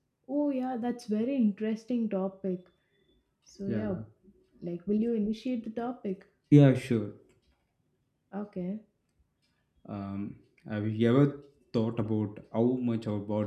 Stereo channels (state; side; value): identical; both; correlation 1.00